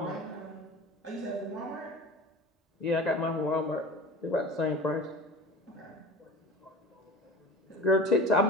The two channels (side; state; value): both; normal; correlation 0.36